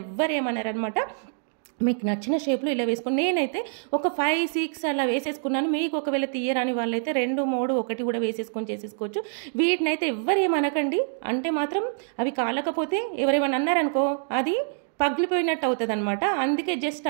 ఎవ్వరు ఏమన్నారనమాట. మీకు నచ్చిన షేప్లో ఇలా వేసుకొని, నేనైతే ఒక 5, 6 అలా వేసేసుకున్నాను. మీకు ఒకవేళ తీయరాని వాళ్ళైతే 2, 3, 1 కూడా వేసేసుకొని చేసేసుకోవచ్చు. వీటినైతే ఎవ్వరేమనకండి, అంటే మాత్రం అవి కాలకపోతే ఎవరేమన్నా అన్నారనుకో అది పగిలిపోయినట్టు అవుతుంది అనమాట. అందుకే జస్ట్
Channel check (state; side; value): silent; left; digital silence